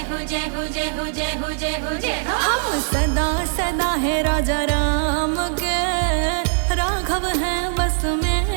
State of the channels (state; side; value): silent; left; 59 dB below the other